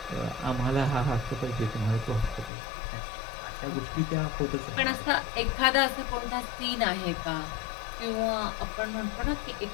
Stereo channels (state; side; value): drops out; right; at 2.5 s